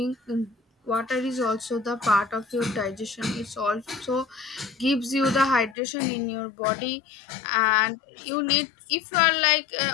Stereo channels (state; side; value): drops out; right; at 5.8 s